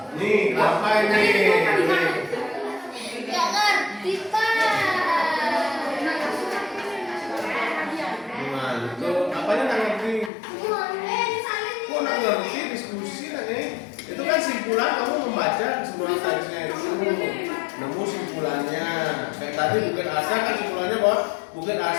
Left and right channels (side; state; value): right; drops out; at 10.3 s